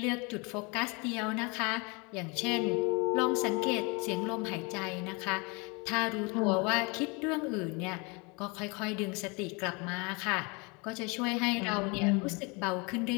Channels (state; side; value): quieter; right; 29.6 dB